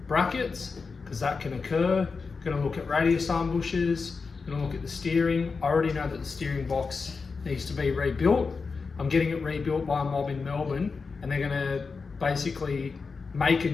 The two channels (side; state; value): right; quieter; 4.7 dB